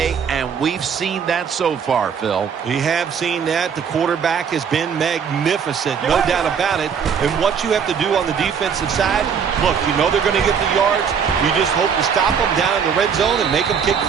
and we've seen that so far, Phil. We have seen that. The quarterback has been magnificent, no doubt about it. And what you have to do on the defensive side, look, you know they're going to get the yards. You just hope to stop them down in the red zone and make them kick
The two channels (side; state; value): left; quieter; 7.0 dB